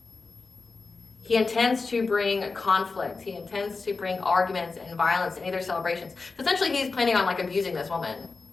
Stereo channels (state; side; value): quieter; right; 4.1 dB